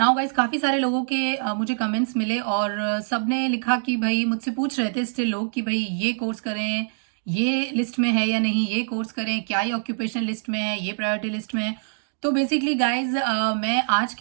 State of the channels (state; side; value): silent; left; digital silence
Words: गाइस, काफी सारे लोगों के मुझे कमेंट्स मिले और सबने लिखा कि भाई मुझसे पूछ रहे थे स्टिल लोग कि भाई ये कोर्स करें, ये लिस्ट में है या नहीं, ये कोर्स करें, क्या ये ऑक्यूपेशन लिस्ट में है, ये प्रायोरिटी लिस्ट में है। तो बेसिकली गाइज मैं आज